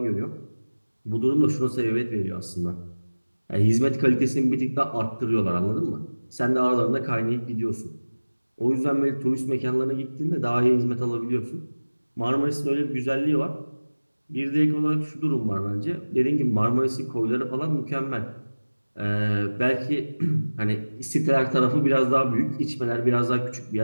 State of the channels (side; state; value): both; inverted; correlation -1.00